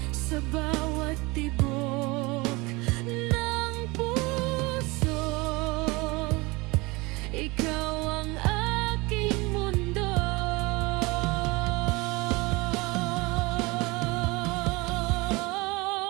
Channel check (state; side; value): quieter; left; 24.2 dB